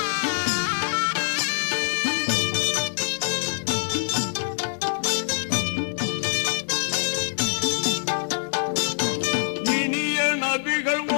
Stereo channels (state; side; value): silent; right; digital silence